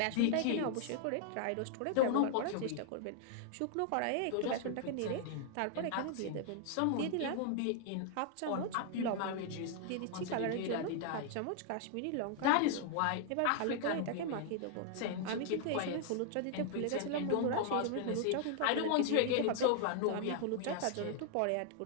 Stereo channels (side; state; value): both; different; correlation 0.00